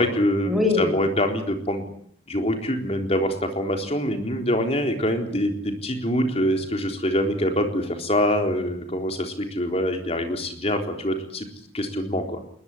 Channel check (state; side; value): normal; both; correlation 0.47